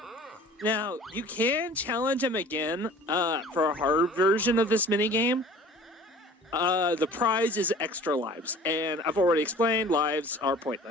Now, you can challenge him again for a hard version of this minigame. The prize is extra lives, and I've already explained lives are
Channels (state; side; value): normal; both; correlation 0.46